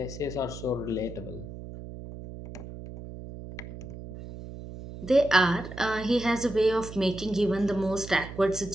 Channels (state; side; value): noise; right; hum, 12 dB below the sound